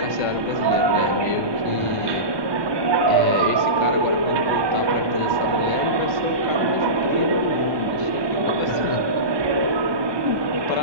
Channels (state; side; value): late; left; 1.2 ms